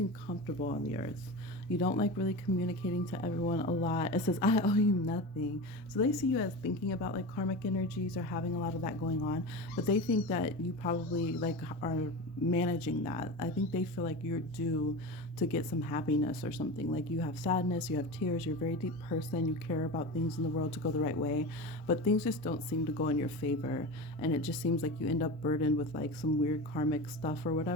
comfortable on the Earth. You don't like really communicating to everyone a lot. It says, I owe you nothing. So they see you as thinking about like karmic energies or having a lot of that going on. But they think that you probably like are managing that. I think they feel like you're due to get some happiness or something. Like you have sadness, you have tears, you're a very deep person, you care about things in the world to go the right way. But things just don't seem to go in your favor. And it just seems like you end up burdened with like some weird karmic stuff or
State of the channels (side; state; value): both; normal; correlation 0.27